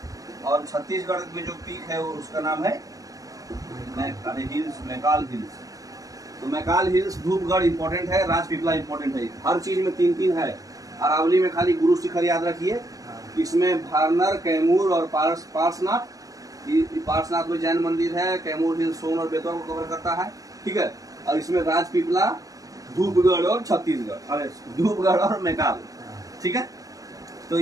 और छत्तीसगढ़ में जो पीक है उसका नाम है मैकाल हिल्स। तो मैकाल हिल्स, धूपगढ़ इंपॉर्टेंट है, राजपीपला इंपॉर्टेंट है। हर चीज में 3-3 है। अरावली में खाली गुरु शिखर याद रखिए। इसमें वारनर, कैमूर और पार्श्वनाथ। पार्श्वनाथ में जैन मंदिर है। कैमूर हिल्स सोन और बेतवा को कवर करता है, ठीक है। और इसमें राजपीपला, धूपगढ़ और छत्तीसगढ़, अरे धूपगढ़ और मैकाल, ठीक है। तो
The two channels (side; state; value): left; late; 0.17 ms